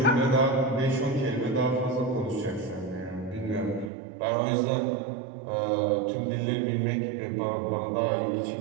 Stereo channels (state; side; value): drops out; left; at 3.9 s